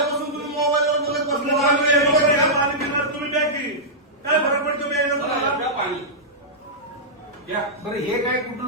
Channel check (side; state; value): both; normal; correlation -0.12